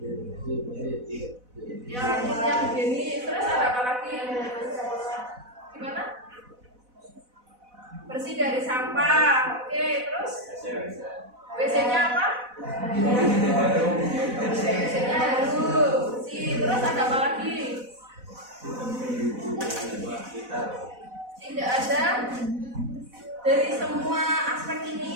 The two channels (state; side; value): late; left; 4.0 ms